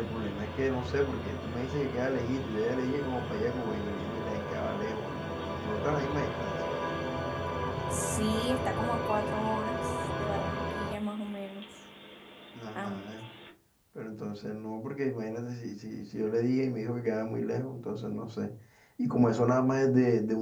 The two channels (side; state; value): both; identical; correlation 1.00